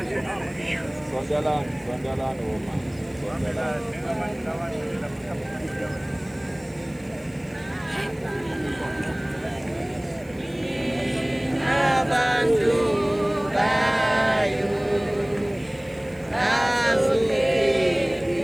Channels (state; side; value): noise; right; hiss, 28 dB below the sound